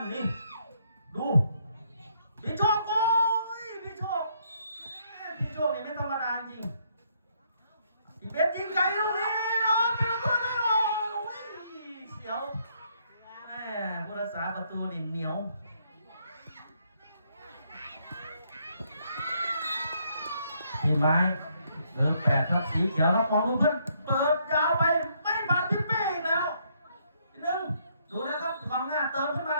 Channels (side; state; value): both; inverted; correlation -0.71